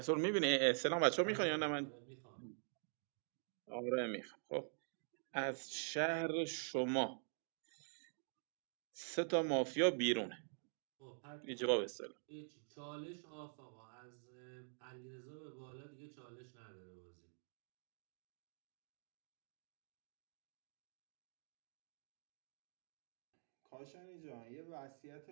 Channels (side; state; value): left; silent; digital silence